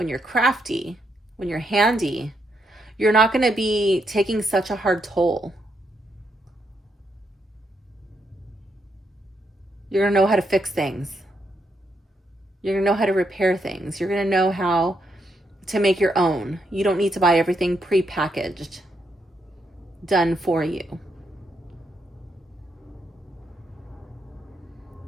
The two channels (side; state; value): both; normal; correlation 0.79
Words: you're crafty, when you're handy, you're not going to be taking such a hard toll. You're going to know how to fix things. You're going to know how to repair things. You're going to know how to make your own. You don't need to buy everything pre-packaged, done for you.